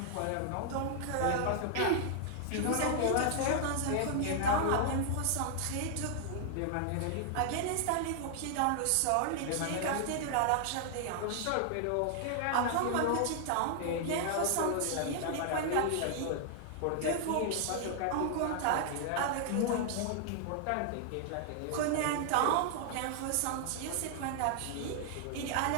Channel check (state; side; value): different; both; correlation 0.00